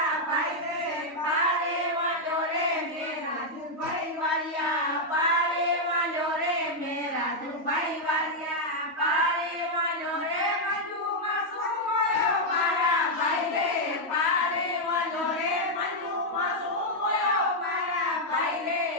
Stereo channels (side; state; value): left; late; 3.2 ms